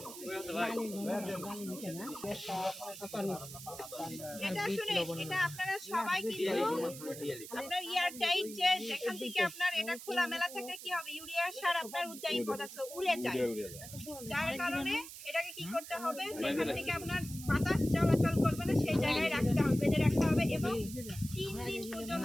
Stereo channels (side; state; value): right; noise; hiss, 13 dB below the sound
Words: এটা শুনে এটা আপনারা সবাই কিন্তু আপনার এয়ার টাইট যে যেখান থেকে আপনার এটা খোলা মেলা থেকে কি হবে, ইউরিয়া সার আপনার উদ্যায়ী পদার্থ উড়ে যায়, যার কারণে এটাকে কি করতে হবে, যেখান থেকে আপনার বাতাস চলাচল করবে না সেই জায়গায় রাখতে হবে, বেঁধে রাখতে হবে এবং 3 দিন